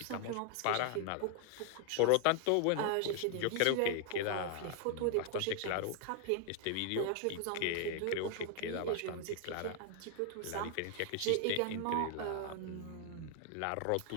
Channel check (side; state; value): both; different; correlation 0.00